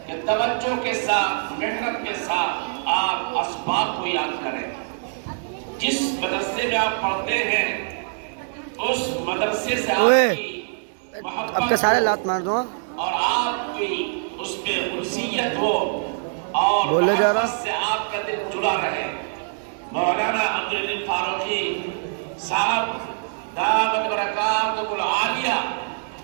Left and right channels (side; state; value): left; silent; digital silence